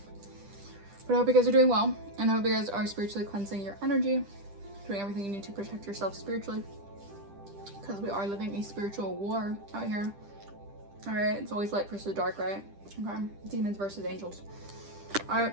But I hope you guys are doing well, and I hope you guys are spiritually cleansing your energy, doing everything you need to protect yourself spiritually, because we are living a spiritual war out here. All right, it's always light versus dark, right? Okay, demons versus angels. All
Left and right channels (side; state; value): left; late; 10 ms